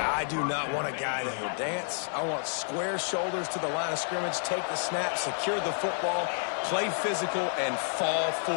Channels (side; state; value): right; silent; 58 dB below the other